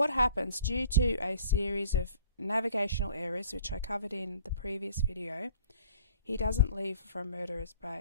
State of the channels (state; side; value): inverted; both; correlation -0.52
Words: happens, due to a series of navigational errors, which I covered in the previous video, he doesn't leave from Murderers